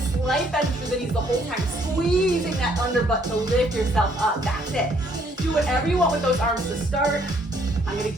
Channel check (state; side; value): normal; both; correlation 0.66